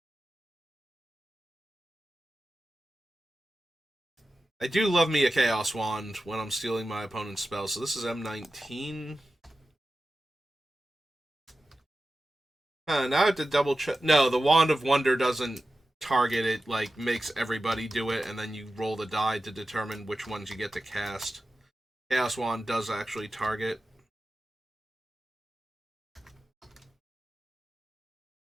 I do love me a Chaos Wand when I'm stealing my opponent's spells, so this is M19. Now I have to double check. No, the Wand of Wonder doesn't target it, like, makes everybody do it, and then you roll the die to determine which ones you get to cast. Chaos Wand does actually target.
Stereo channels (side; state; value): both; normal; correlation 0.93